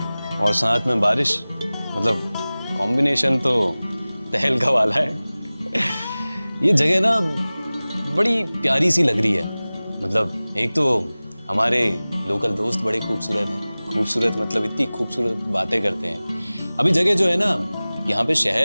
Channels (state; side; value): inverted; both; correlation -0.99